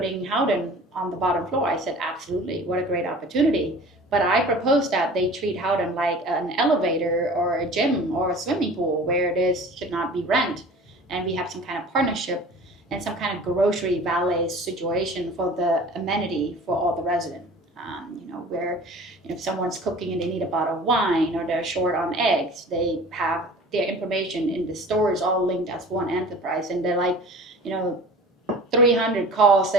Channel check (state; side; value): normal; both; correlation 0.42